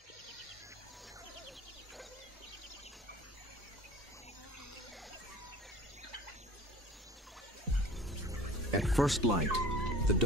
At first light, the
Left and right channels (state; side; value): normal; both; correlation 0.43